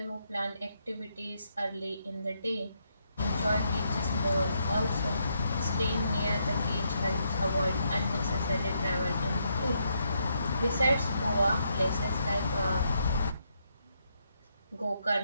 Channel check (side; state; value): both; inverted; correlation -0.77